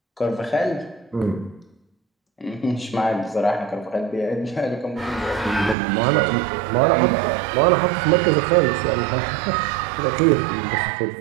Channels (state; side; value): drops out; left; at 5.8 s